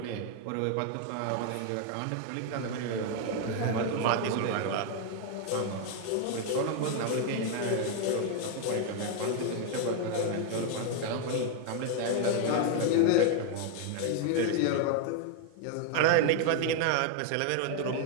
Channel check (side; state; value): both; different; correlation 0.00